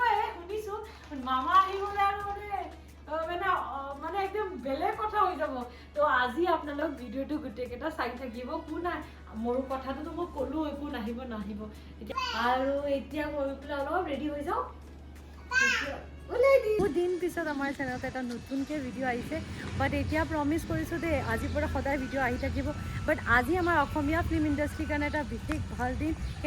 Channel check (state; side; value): identical; both; correlation 1.00